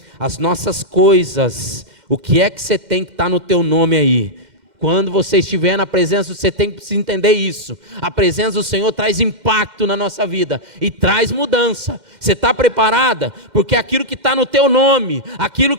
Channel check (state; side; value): late; left; 2.1 ms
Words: as nossas coisas, o que é que você tem que estar no teu nome aí? Quando você estiver na presença, você tem que entender isso. A presença do Senhor traz impacto na nossa vida e traz mudança. Você está preparada? Porque aquilo que está no teu nome, aquilo